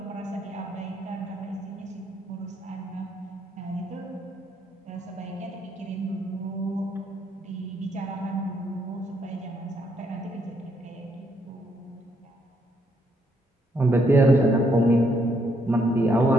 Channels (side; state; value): both; normal; correlation 0.73